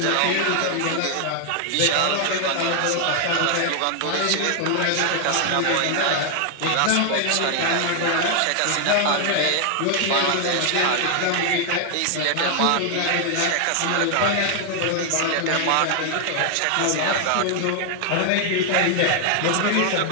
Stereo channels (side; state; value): both; different; correlation 0.00